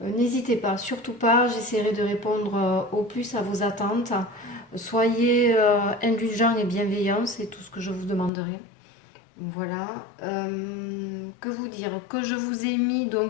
pas, surtout pas, j'essaierai de répondre au plus à vos attentes. Soyez indulgents et bienveillants, c'est tout ce que je vous demanderai. Voilà. Que vous dire? Que je vous ai mis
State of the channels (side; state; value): right; drops out; at 8.3 s